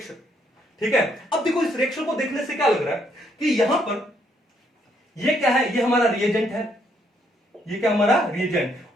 ठीक है। अब देखो इस रिएक्शन को देखने से क्या लग रहा है कि यहां पर ये क्या है, ये हमारा रिएजेंट है, ये क्या हमारा रिएजेंट,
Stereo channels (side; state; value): both; normal; correlation 0.71